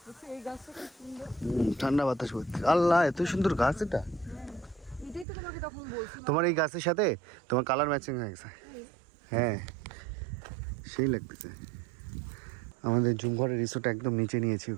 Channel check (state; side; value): drops out; left; at 5.2 s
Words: ঠান্ডা বাতাস করতে। আল্লাহ, এত সুন্দর গাছ এটা। তোমার এই গাছের সাথে তোমার কালার ম্যাচিং হয়ে গেছে। হ্যাঁ, সেই লাগতেছে। আমাদের জুমঘরের রিসোর্ট একদম নিচে নিয়েছি,